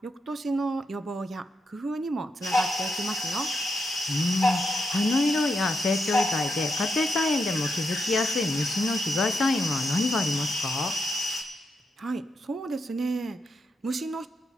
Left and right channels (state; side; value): normal; both; correlation 0.83